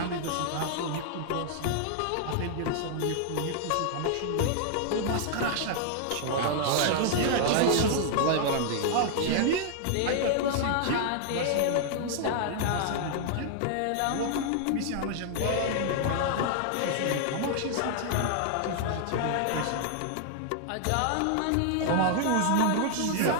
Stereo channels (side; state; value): both; different; correlation -0.01